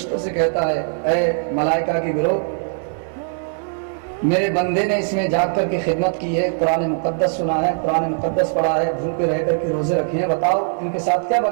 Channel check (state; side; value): silent; left; digital silence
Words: سے کہتا ہے، اے ملائکہ کی گروہ، میرے بندے نے اس میں جاگ کر کے خدمت کی ہے، قرآن مقدس سنا ہے، قرآن مقدس پڑھا ہے، بھوکے رہ کر کے روزے رکھے ہیں، بتاؤ ان کے ساتھ کیا